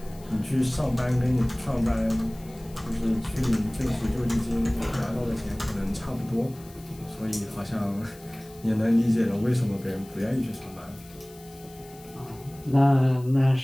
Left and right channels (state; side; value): noise; left; hiss, 24 dB below the sound